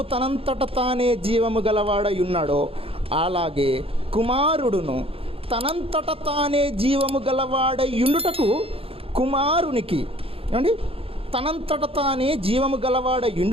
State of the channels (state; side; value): late; left; 0.27 ms